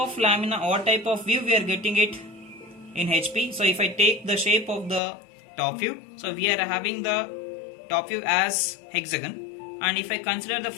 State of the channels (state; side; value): drops out; right; at 5.0 s